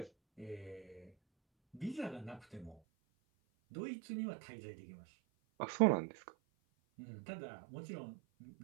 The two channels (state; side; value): drops out; left; at 2.8 s